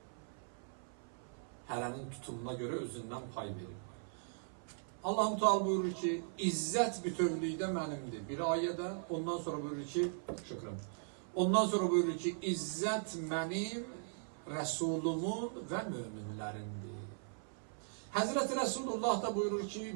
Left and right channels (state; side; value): silent; left; 52 dB below the other